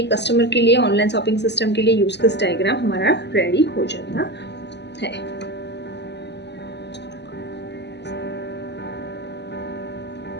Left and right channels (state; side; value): late; right; 0.50 ms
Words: कस्टमर के लिए, ऑनलाइन शॉपिंग सिस्टम के लिए यूज केस डायग्राम हमारा रेडी हो जाता है।